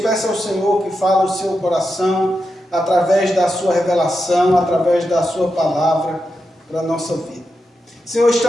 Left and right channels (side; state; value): both; normal; correlation 0.88